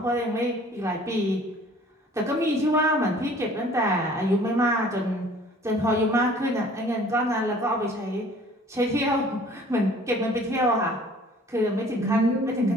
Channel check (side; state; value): both; normal; correlation 0.52